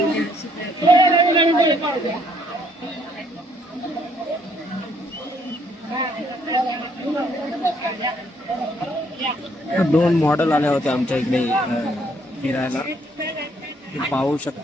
दोन मॉडेल आल्या होत्या आमच्या इकडे फिरायला, ते पाहू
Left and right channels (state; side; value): normal; both; correlation 0.67